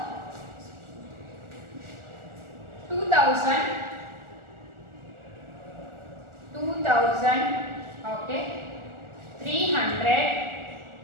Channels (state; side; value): late; left; 1.4 ms